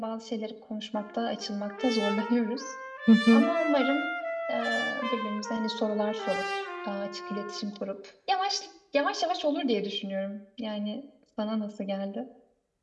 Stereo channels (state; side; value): identical; both; correlation 1.00